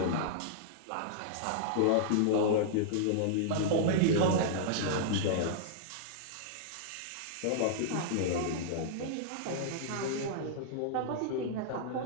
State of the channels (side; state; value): both; different; correlation -0.02